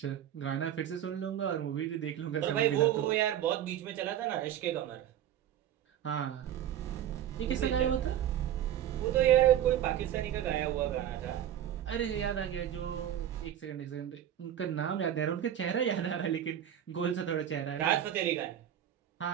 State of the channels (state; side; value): quieter; left; 10.8 dB